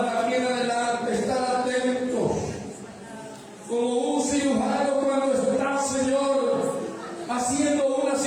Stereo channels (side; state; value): both; identical; correlation 1.00